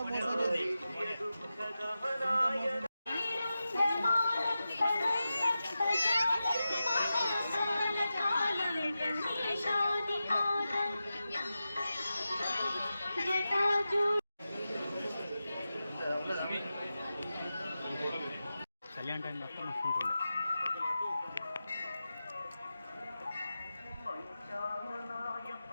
కళ్యాణ్ టైం మొత్తం వస్తుంటుంది.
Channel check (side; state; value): both; inverted; correlation -0.92